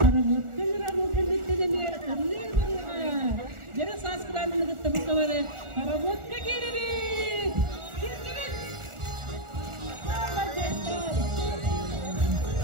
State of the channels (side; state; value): left; late; 1.4 ms